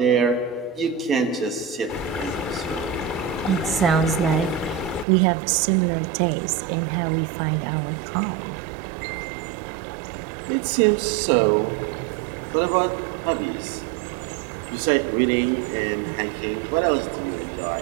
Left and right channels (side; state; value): left; drops out; at 5.1 s